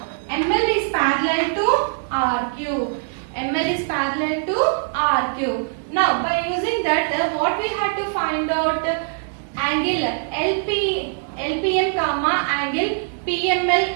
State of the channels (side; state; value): left; silent; 64 dB below the other